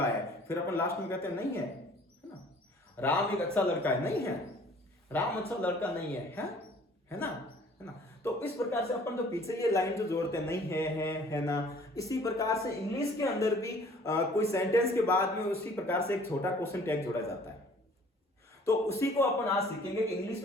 है, फिर अपन लास्ट में कहते हैं नहीं है ना, राम एक अच्छा लड़का है, नहीं है, राम अच्छा लड़का नहीं है ना, है ना। तो इस प्रकार से अपन तो पीछे ये लाइन जो जोड़ते हैं, नहीं है ना, इसी प्रकार से इंग्लिश के अंदर भी कोई सेंटेंस के बाद में उसी प्रकार से एक छोटा क्वेश्चन टैग जोड़ा जाता है। तो उसी को अपन आज सीखेंगे कि इंग्लिश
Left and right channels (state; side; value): normal; both; correlation 0.53